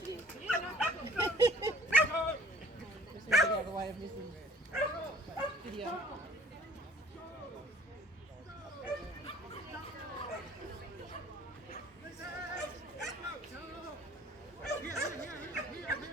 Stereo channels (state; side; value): normal; both; correlation 0.53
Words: it in. Just need to get out of the way of missing video.